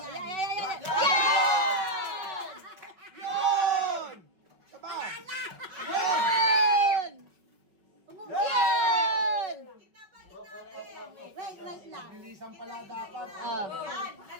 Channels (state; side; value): late; left; 5.4 ms